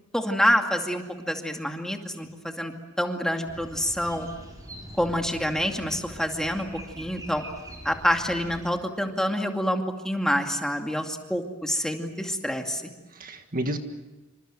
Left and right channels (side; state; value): both; normal; correlation 0.83